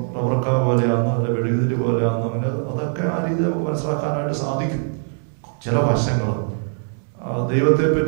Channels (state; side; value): silent; left; 62 dB below the other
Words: റബ്ബർക്ക പോലെയാണെന്നോ അല്ല വെടുകുതിരി പോലെയാണെന്നോ അങ്ങനെ അതൊക്കെ ആ രീതി നമുക്ക് മനസ്സിലാക്കാനായിട്ട് സാധിക്കും. ചില വശങ്ങൾ